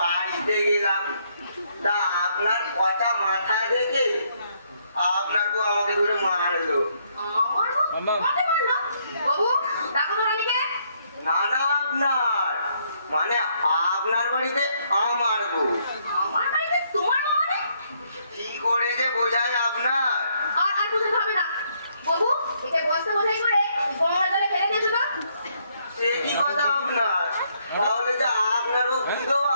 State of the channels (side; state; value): both; inverted; correlation -0.71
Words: গেলাম, তা আপনার কটা মাথা দেখে আপনার বউ আমাকে ধরে মারলো। আমার বউ আমাকে মারলো? বাবু, ডাকো তো রানীকে। না না আপনার মানে আপনার বাড়িতে আমার বউ। আমার বাড়িতে তোমার বউ মানে? কি করে যে বোঝায় আপনার। আর বুঝতে হবে না। বাবু, একে বস্তা বোঝাই করে গঙ্গার জলে ফেলে দিয়েছো তো? সে কি কথা আপনার, তাহলে যে আপনার বউ বিধবা